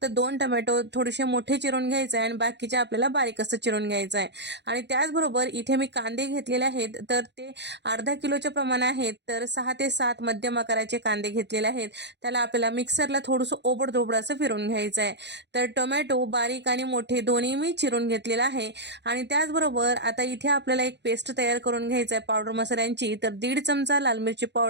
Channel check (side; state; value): left; late; 0.50 ms